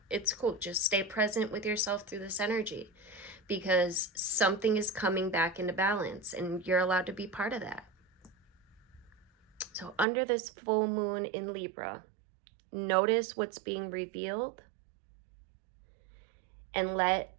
it's cool. Just stay present with yourself through this energy, because something is coming back into balance and you're allowed to be part of that. So under this full moon in Libra, notice what's being revealed and let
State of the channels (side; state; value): left; drops out; at 10.1 s